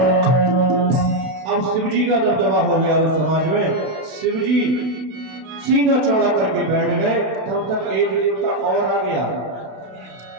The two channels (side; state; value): left; late; 32 ms